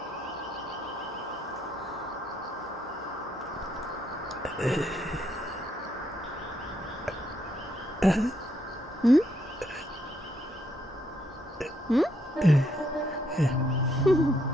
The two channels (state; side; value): normal; both; correlation 0.74